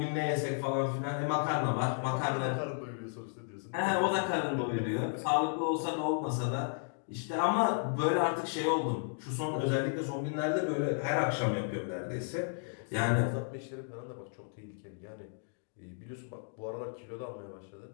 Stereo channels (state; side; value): silent; right; digital silence